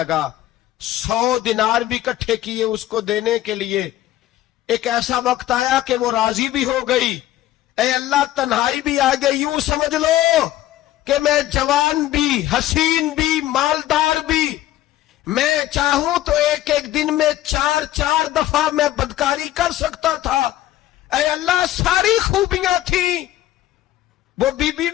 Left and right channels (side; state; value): right; quieter; 14.2 dB